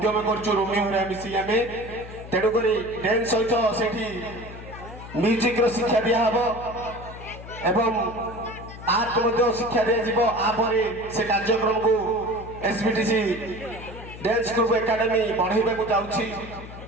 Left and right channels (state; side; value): noise; left; hum, 14 dB below the sound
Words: करछु रोमियो रे मिसी आमे तेडु करी डांस सहित सेठी म्यूजिक रो शिक्षा दिया हबो एवं आर्ट मध्य शिक्षा दिया जिवो। आ परे से कार्यक्रम को एसबीटीसी डांस ग्रुप एकेडमी बढ़ाइबा को जाउची।